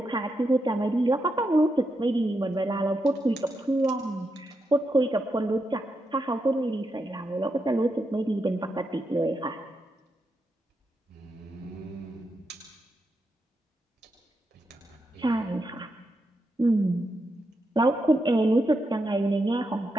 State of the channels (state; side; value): normal; both; correlation 0.84